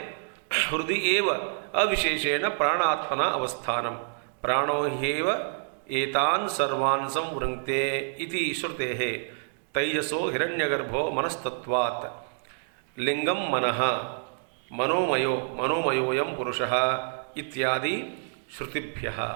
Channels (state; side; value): silent; left; digital silence